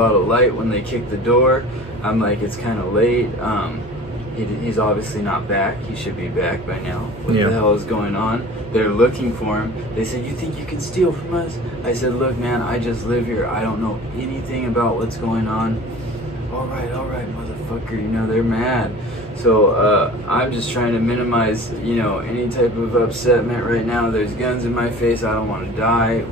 of light when they kick the door. I'm like, it's kind of late. He's obviously not back. He should be back by now. What the hell is going on? They're looking for him. They said, you think you can steal from us? I said, look, man, I just live here. I don't know anything about what's going on. All right, motherfucker. You know, they're mad. So I'm just trying to minimize, you know, any type of upsetment right now. There's guns in my face. I don't want to die,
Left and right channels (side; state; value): both; normal; correlation 0.42